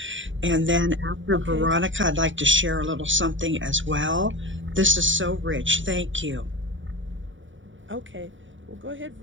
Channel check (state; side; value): late; left; 0.56 ms